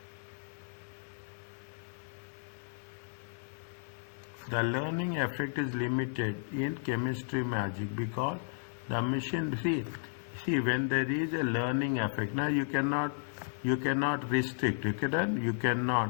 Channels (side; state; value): right; silent; 55 dB below the other